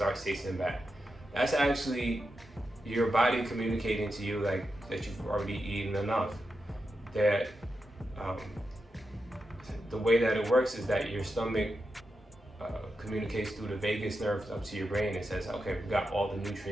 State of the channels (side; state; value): both; normal; correlation 0.88